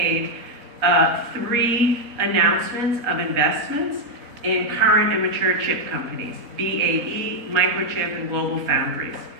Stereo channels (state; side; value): late; left; 4.1 ms